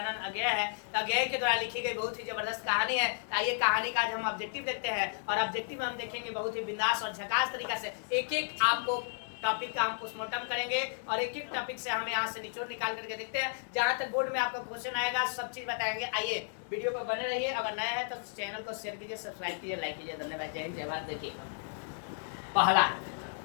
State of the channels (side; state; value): right; silent; digital silence